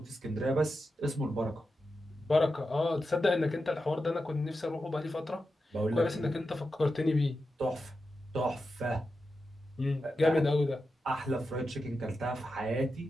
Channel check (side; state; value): both; normal; correlation 0.90